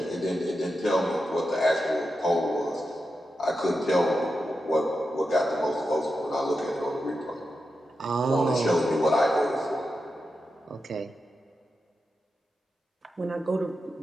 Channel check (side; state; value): both; normal; correlation 0.89